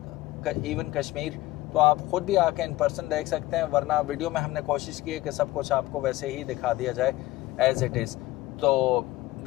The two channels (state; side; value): quieter; right; 17.5 dB